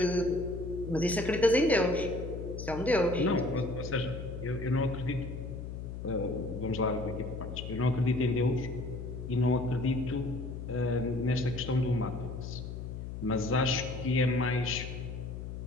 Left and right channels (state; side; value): noise; left; hum, 7 dB below the sound